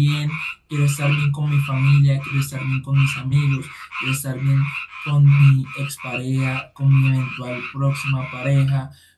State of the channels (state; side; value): identical; both; correlation 1.00